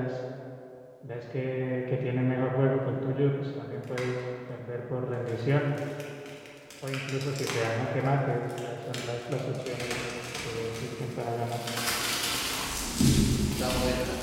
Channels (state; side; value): identical; both; correlation 1.00